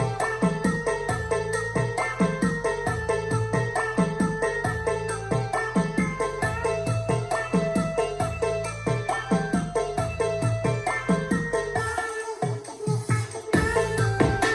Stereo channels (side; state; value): both; identical; correlation 1.00